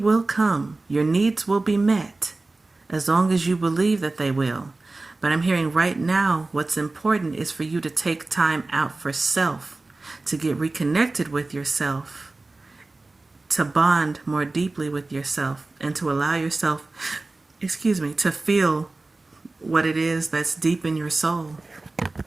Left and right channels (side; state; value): left; quieter; 3.2 dB